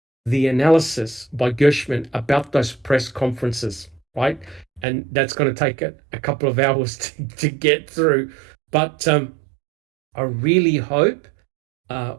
the analysis by Gershman about those press conferences, right? And that's going to take a couple of hours to get through. But I really hope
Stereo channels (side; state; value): left; drops out; at 4.9 s